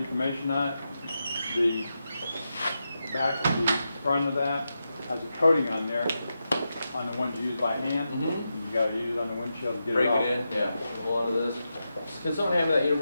on it. The back, the front of that has a coating on there, on the ones you use by hand. You gotta use it on the windshield to get Break it off. it in. Yeah. Hold on to this. Can someone hand me that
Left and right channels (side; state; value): both; inverted; correlation -0.88